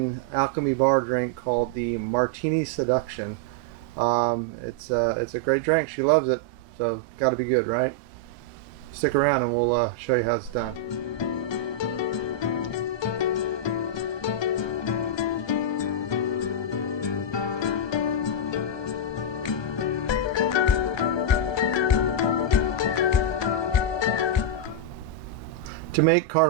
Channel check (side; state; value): right; late; 1.2 ms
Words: Alchemy Bar drink called the Martini Seduction. It's a great drink. She loves it, so got to be good, right? Stick around and we'll show you how it's done. To make